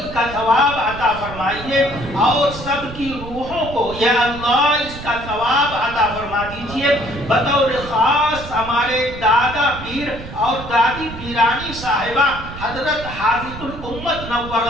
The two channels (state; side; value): noise; right; rumble, 12 dB below the sound